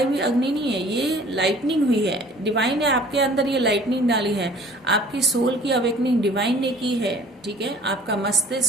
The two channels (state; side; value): normal; both; correlation 0.51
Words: हुई अग्नि नहीं है, ये लाइटनिंग हुई है, डिवाइन है आपके अंदर, ये लाइटनिंग डाली है। आपकी सोल की अवेकनिंग डिवाइन ने की है, ठीक है। आपका